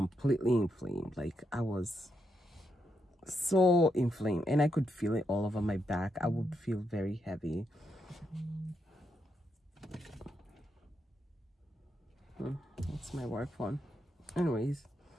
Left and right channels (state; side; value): normal; both; correlation 0.81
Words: inflamed. Like I was so inflamed, and I could feel it all over my back. I would feel very heavy. That's my work phone. Anyways,